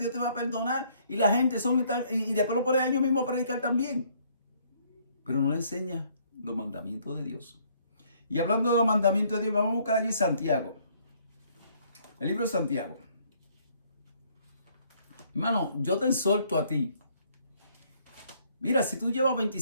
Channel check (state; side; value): inverted; both; correlation -0.65